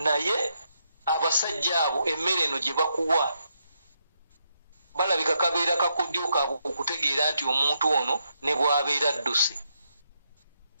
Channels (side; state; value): both; inverted; correlation -0.80